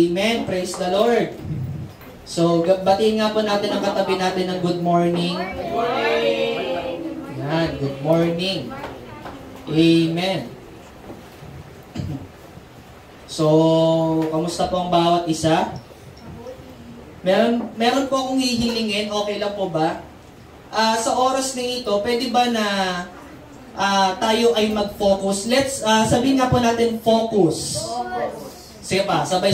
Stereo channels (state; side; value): identical; both; correlation 1.00